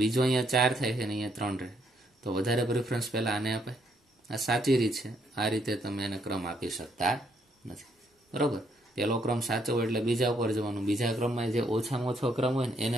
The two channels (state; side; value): normal; both; correlation 0.72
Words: બીજો અહીંયા 4 થાય છે ને અહીંયા 3 રહે. તો વધારે પ્રિફરન્સ પહેલા આને અપાય. આ સાચી રીત છે. આ રીતે તમે એને ક્રમ આપી શકતા નથી, બરોબર. પહેલો ક્રમ સાચો હોય એટલે બીજા ઉપર જવાનું, બીજા ક્રમમાં જે ઓછામાં ઓછો ક્રમ હોય ને એને